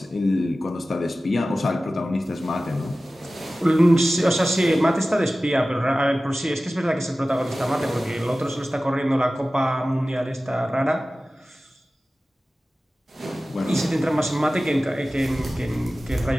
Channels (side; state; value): both; normal; correlation 0.96